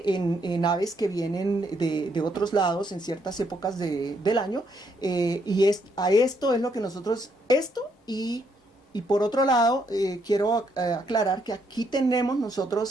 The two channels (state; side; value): normal; both; correlation 0.73